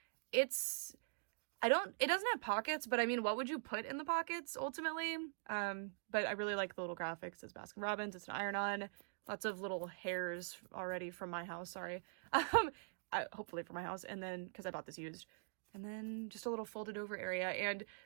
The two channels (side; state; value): left; silent; digital silence